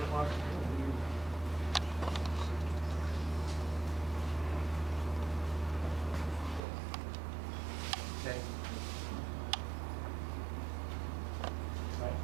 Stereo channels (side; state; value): left; drops out; at 6.6 s